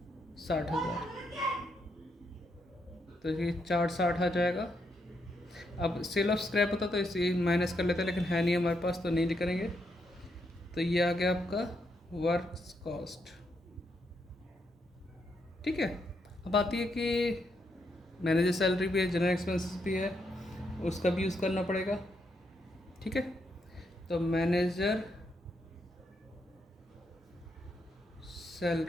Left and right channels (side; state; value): both; normal; correlation 0.79